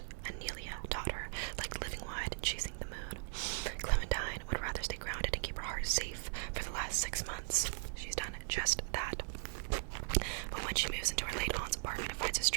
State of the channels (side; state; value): left; silent; digital silence